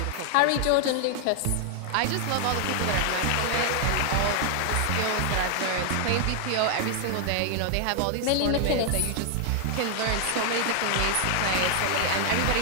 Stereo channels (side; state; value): both; different; correlation 0.00